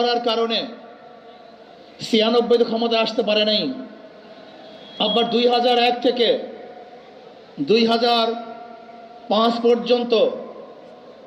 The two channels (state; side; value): identical; both; correlation 1.00